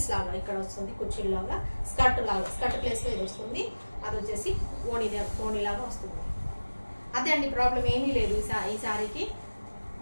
లాగా ఇక్కడ వస్తుంది, కుర్చీలు లాగా, స్కర్ట్ ప్లేస్లో ఇది వస్తుంది. అది వచ్చేసి ఓణి లాగా వస్తుంది. అదే అండి, ప్రాబ్లం ఏమీ లేదు ఈ శారీకి.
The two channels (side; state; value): both; inverted; correlation -1.00